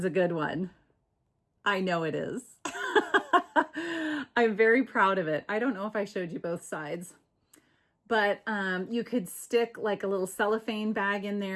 a good one. I know it is. I'm very proud of it. I don't know if I showed you both sides, but you could stick like a little cellophane bag in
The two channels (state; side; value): identical; both; correlation 1.00